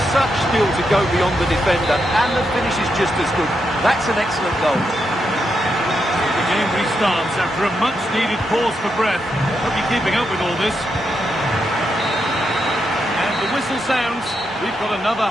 such skill to go beyond the defender and the finish is just as good. That's an excellent goal. The game restarts after a much-needed pause for breath. Hope you're keeping up with all this. And the whistle sounds. We've got another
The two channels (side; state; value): both; normal; correlation 0.83